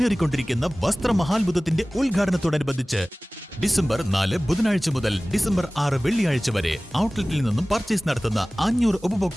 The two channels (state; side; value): normal; both; correlation 0.98